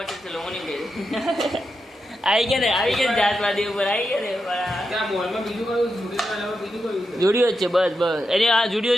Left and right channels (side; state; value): both; normal; correlation 0.87